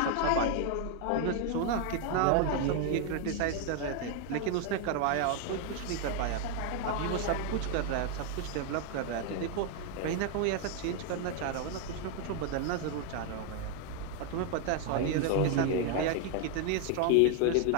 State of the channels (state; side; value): different; both; correlation 0.01